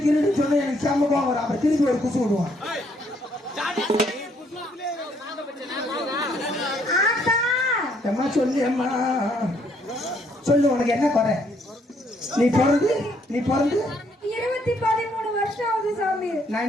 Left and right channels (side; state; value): both; normal; correlation 0.69